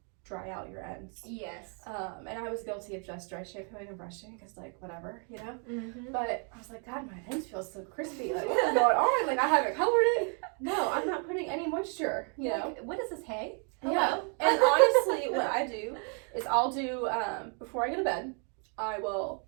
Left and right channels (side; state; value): left; quieter; 39.7 dB